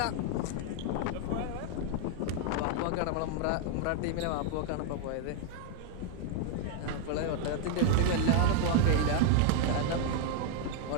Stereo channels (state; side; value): different; both; correlation 0.00